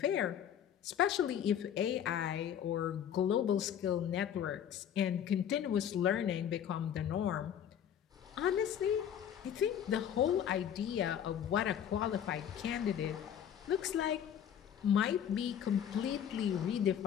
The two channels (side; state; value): right; quieter; 9.3 dB